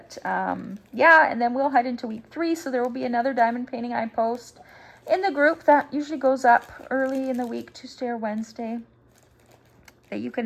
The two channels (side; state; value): both; identical; correlation 1.00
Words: yeah, and then we'll head into week 3. So there will be another diamond painting I post in the group that usually goes up early in the week, Tuesday or Wednesday, that you